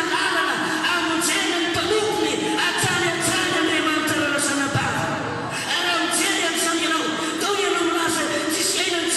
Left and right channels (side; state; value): both; identical; correlation 1.00